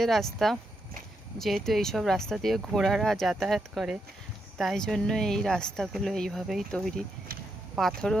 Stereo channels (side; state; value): both; normal; correlation 0.82